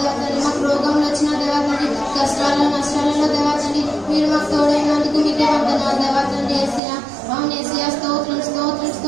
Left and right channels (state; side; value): drops out; left; at 6.8 s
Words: తండ్రి, మాకు రోగంలో వచ్చిన దేవా తండ్రి, కష్టాల్లో నష్టాలలో దేవా తండ్రి, మీరు మాకు తోడైనందుకు మీకే వందనాలు దేవా తండ్రి యేసయ్యా. అవును యేసయ్యా, స్తోత్రం స్తోత్రం